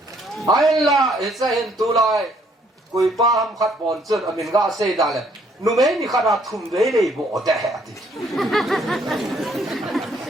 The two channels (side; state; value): both; normal; correlation 0.65